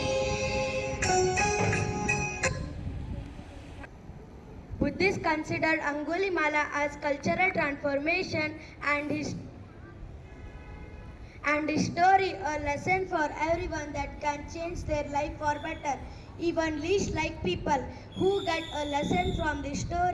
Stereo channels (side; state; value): both; identical; correlation 1.00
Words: Buddhists consider Angulimala as cultural transformation and his story a lesson for everyone that can change their life for better. Even least like people who get a lesson from this